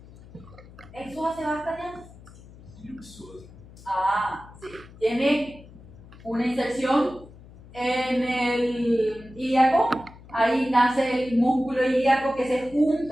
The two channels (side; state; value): left; noise; hum, 20 dB below the sound